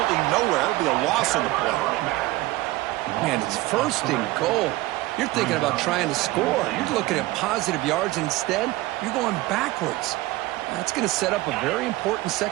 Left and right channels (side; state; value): left; quieter; 18.8 dB